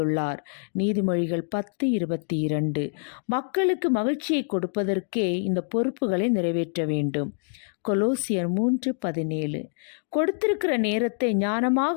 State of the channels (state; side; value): silent; right; digital silence